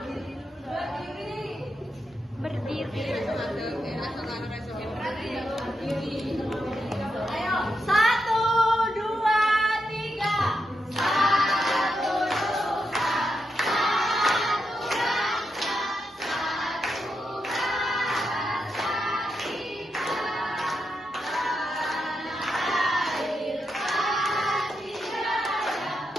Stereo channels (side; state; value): both; normal; correlation 0.85